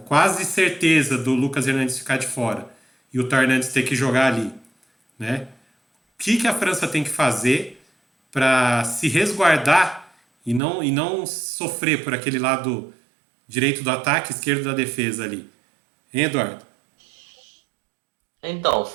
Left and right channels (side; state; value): left; drops out; at 10.6 s